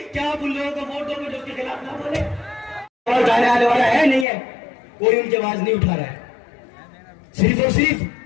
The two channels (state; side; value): drops out; right; at 4.2 s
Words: आप उन लोगों को वोट दोगे जो उसके खिलाफ ना बोले? और उठाने आने वाला है नहीं है, कोई उनकी आवाज नहीं उठा रहा है। सिर्फ और